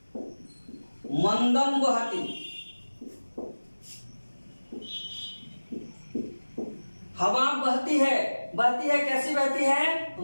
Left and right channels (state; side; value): inverted; both; correlation -1.00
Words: मंदम वहति, हवा बहती है, बहती है कैसी बहती है